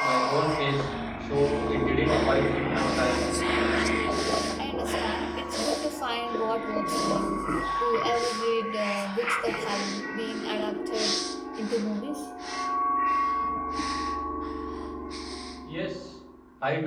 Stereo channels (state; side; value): identical; both; correlation 1.00